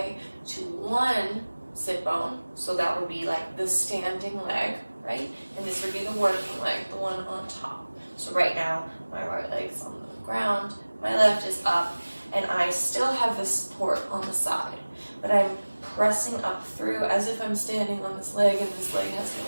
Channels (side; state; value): both; inverted; correlation -1.00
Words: to one sit bone, so that would be like the standing leg, right? And this would be the working leg, the one on top. So right now, my right leg's on the ground, my left is up, and I still have the support on the side, but I'm pressing up through as if I'm standing on this leg and this leg has